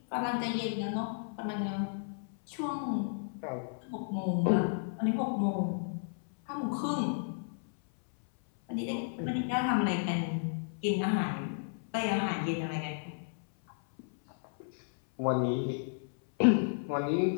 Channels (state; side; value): silent; right; 56 dB below the other